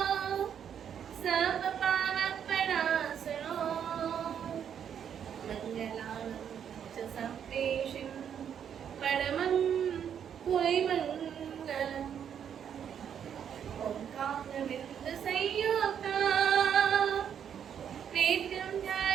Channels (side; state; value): left; quieter; 8.5 dB